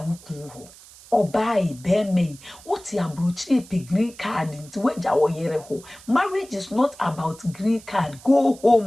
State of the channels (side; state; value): right; noise; hiss, 21 dB below the sound